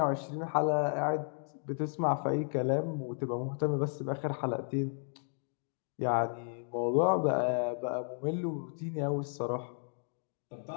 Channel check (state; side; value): silent; right; 55 dB below the other